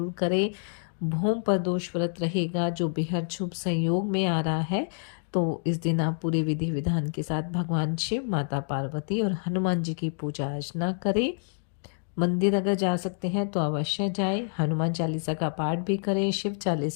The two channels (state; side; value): silent; right; digital silence